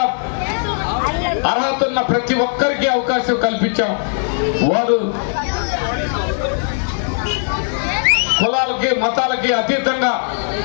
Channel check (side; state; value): right; silent; digital silence